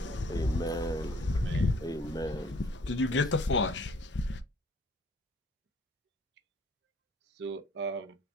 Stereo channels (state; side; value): normal; both; correlation 0.57